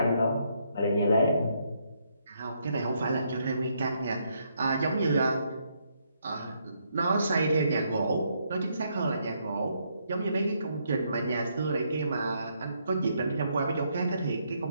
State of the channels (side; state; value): both; inverted; correlation -0.74